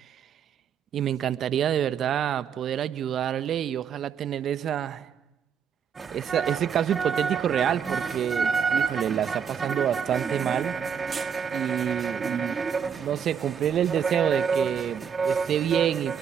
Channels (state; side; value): quieter; left; 7.6 dB